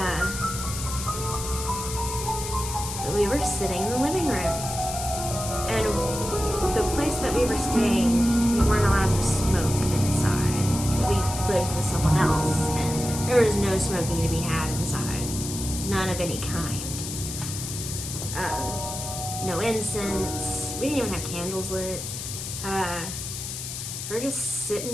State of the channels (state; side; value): noise; left; hiss, 7 dB below the sound